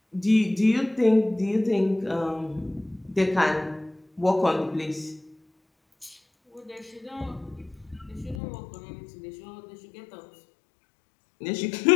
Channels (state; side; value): drops out; right; at 8.4 s